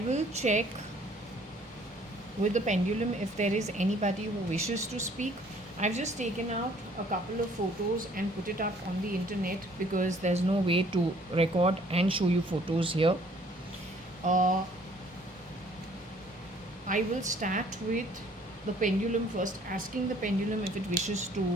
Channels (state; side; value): normal; both; correlation 0.58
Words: will check with the pendulum if there is anybody who wishes to speak. I've just taken out a couple of photos and put it up on the internet because there's no way to record and show you photos here. Uh, I will start with the pendulum first, asking the pendulum if it wishes